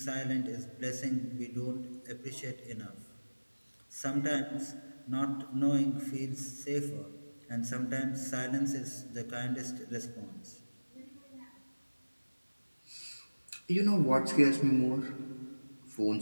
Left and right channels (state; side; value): inverted; both; correlation -1.00